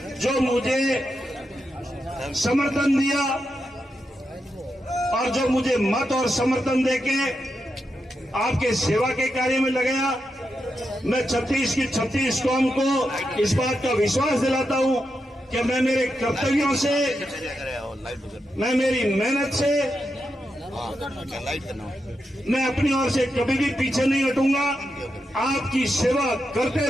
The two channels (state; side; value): normal; both; correlation 0.86